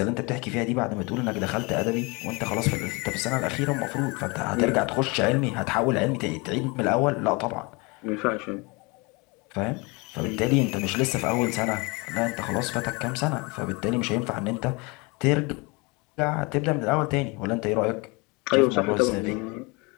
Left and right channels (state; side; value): quieter; right; 27.9 dB